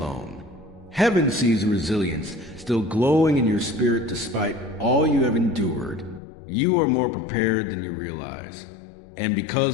Heaven sees the resilience still glowing in your spirit despite all you have endured. You are more prepared than you realize. And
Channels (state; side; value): drops out; right; at 6.2 s